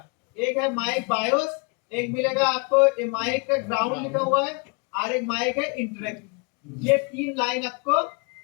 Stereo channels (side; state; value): right; quieter; 33.2 dB